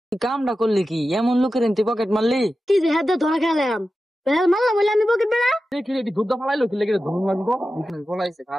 কামটা করলি কি এমন লোকের তুই পকেট মারলি কি যে হাত ধরা খেলাম মারলাম বলে আমি পকেট বেড়া দেখি এটি দুধ ফালাইলো কি লেগে ধুম মারবো ফলাইছে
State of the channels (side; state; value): both; normal; correlation 0.93